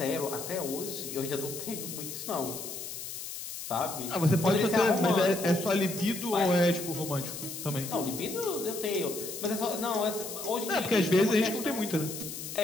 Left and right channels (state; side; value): noise; left; hiss, 8 dB below the sound